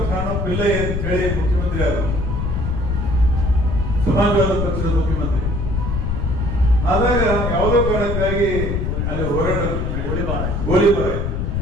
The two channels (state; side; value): noise; left; rumble, 1 dB below the sound